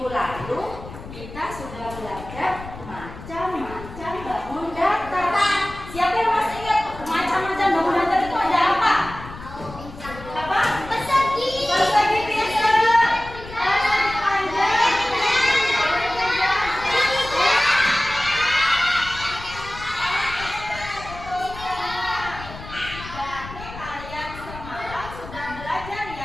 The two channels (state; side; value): noise; left; rumble, 14 dB below the sound